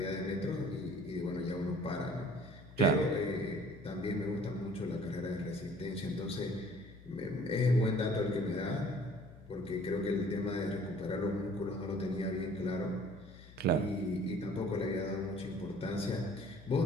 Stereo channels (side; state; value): left; noise; hum, 19 dB below the sound